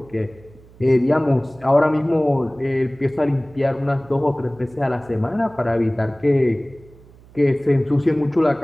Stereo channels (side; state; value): right; noise; hum, 25 dB below the sound